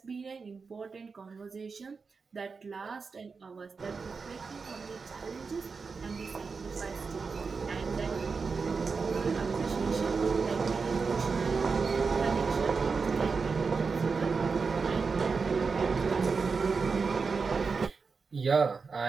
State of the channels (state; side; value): quieter; left; 4.9 dB